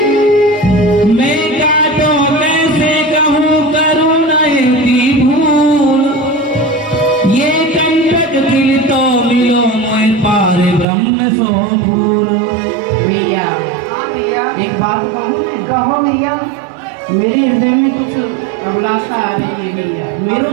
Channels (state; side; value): drops out; left; at 10.9 s